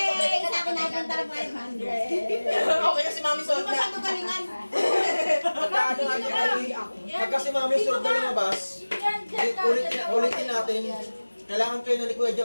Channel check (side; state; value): both; inverted; correlation -1.00